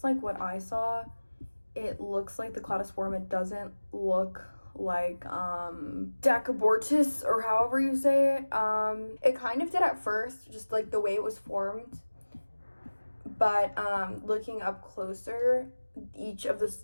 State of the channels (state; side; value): inverted; both; correlation -1.00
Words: like what I saw, it looks like the cladosporium. It doesn't look like Stachybortis or however you say it. It kind of did at first, just like the way it was formed. But looking up closer, each of the